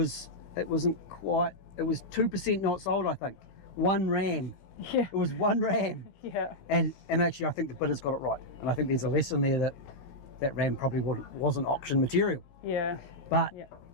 quite. It was 2% not sold, I think. One ram. Yeah. It was one ram. Yeah. And actually, I think the bidder's got it right. And I think there's a lesson there that ram probably wasn't auction material. Yeah. But yeah.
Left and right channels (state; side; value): late; right; 17 ms